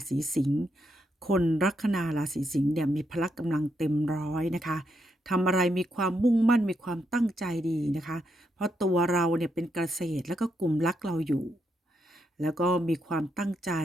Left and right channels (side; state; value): both; normal; correlation 0.80